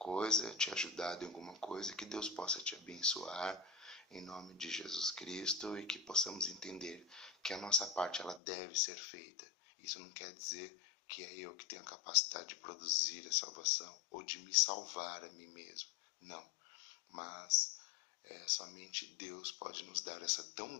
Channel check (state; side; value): drops out; right; at 8.4 s